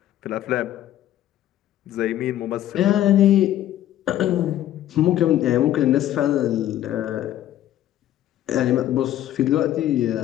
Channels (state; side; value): quieter; right; 12.6 dB